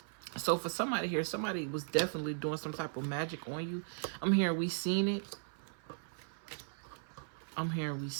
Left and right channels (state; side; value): silent; left; 53 dB below the other